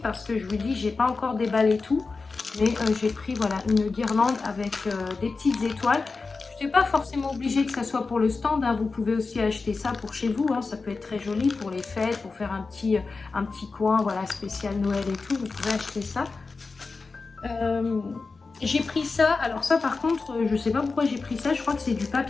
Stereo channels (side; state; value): right; quieter; 4.2 dB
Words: que je vous dis, j'ai pas encore déballé tout. Mais j'ai pris voilà, une guirlande avec des petites étoiles. Je n'ai pas forcément obligé que ça soit pour le stand. Hein. Vous pouvez aussi acheter ça pour chez vous. Hein. Ça peut être très joli pour les fêtes, pour faire un petit coin voilà, spécial Noël et tout. Vous pouvez acheter ça. J'ai pris ça. Alors ça par contre, je ne sais pas pourquoi j'ai pris ça. Je crois que c'est du